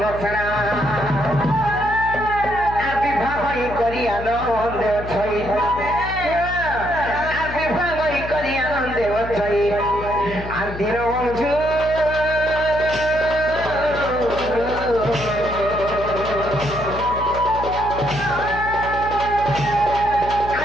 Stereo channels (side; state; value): left; noise; hum, 10 dB below the sound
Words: সেনা আর বিবাহ করি আনন্দ ছই আর বিবাহ করি আনন্দ ছই আর দিন বন্ধু